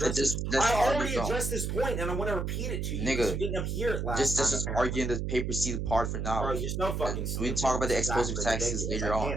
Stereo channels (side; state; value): right; noise; hum, 2 dB below the sound